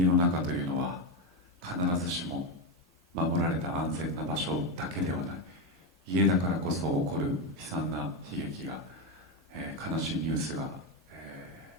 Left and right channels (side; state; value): both; normal; correlation 0.10